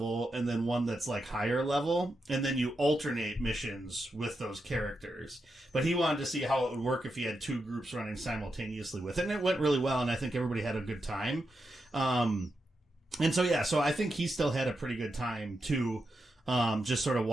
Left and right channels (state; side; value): normal; both; correlation 0.86